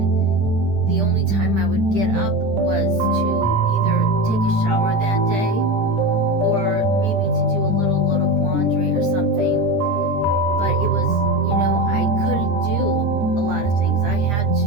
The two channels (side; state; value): left; late; 10 ms